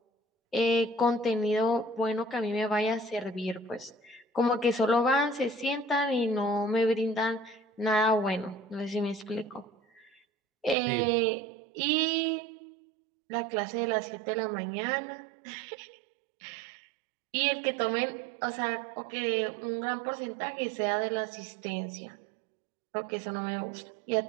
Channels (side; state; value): left; drops out; at 10.8 s